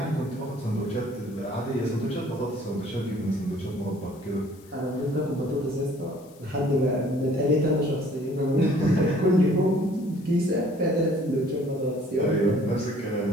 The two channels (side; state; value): left; noise; hiss, 27 dB below the sound